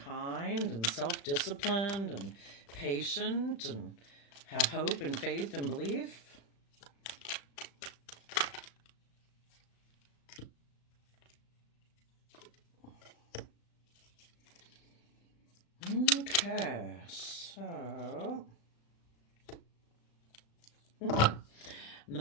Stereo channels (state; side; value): late; right; 36 ms